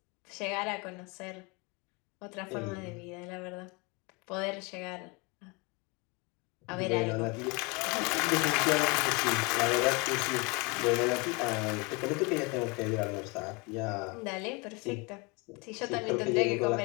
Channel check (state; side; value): quieter; right; 28.1 dB